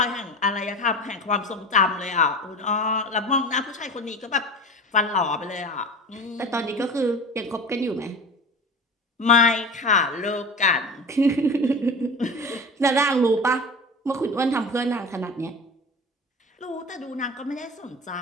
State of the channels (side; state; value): both; normal; correlation 0.32